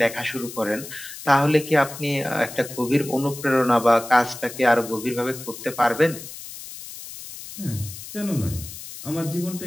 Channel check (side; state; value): left; noise; hiss, 13 dB below the sound